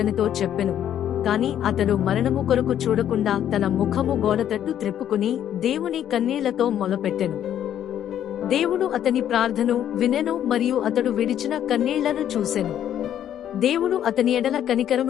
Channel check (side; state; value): right; quieter; 10.5 dB